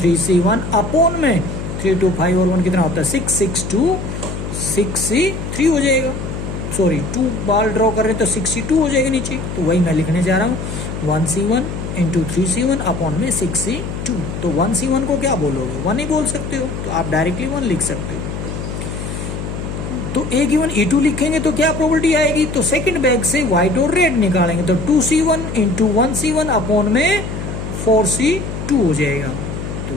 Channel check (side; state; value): left; noise; hum, 6 dB below the sound